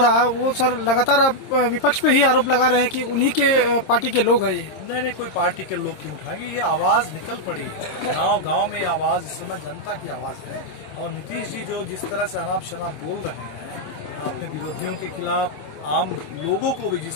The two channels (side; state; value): right; late; 26 ms